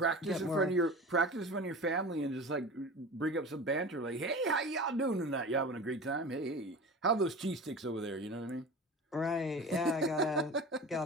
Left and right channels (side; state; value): both; normal; correlation 0.34